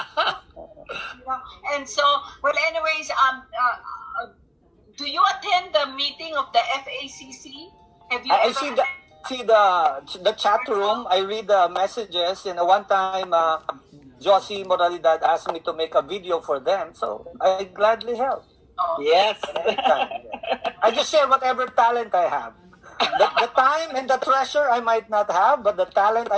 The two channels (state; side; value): identical; both; correlation 1.00